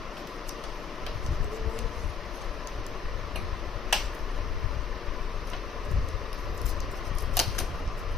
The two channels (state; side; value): quieter; right; 5.9 dB